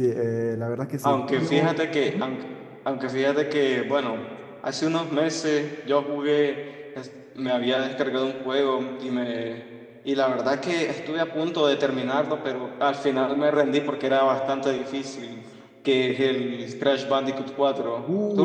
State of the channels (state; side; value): identical; both; correlation 1.00